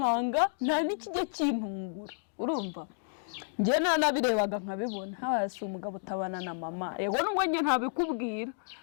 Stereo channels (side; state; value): right; silent; digital silence